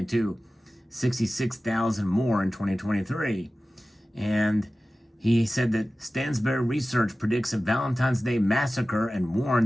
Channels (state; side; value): normal; both; correlation 0.96